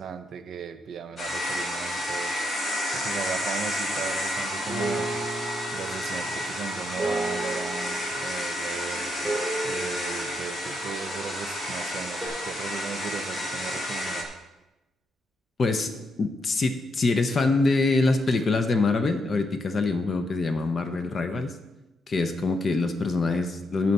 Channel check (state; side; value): normal; both; correlation 0.80